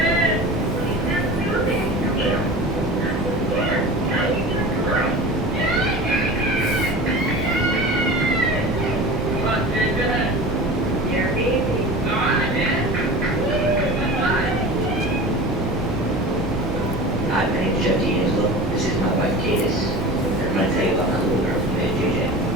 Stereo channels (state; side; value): normal; both; correlation 0.35